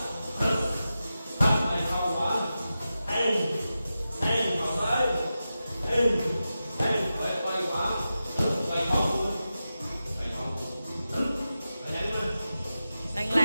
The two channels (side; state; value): both; inverted; correlation -0.92